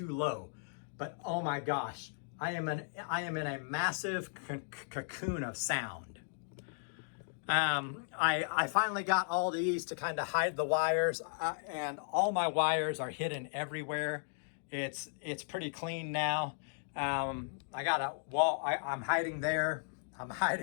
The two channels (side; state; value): right; silent; digital silence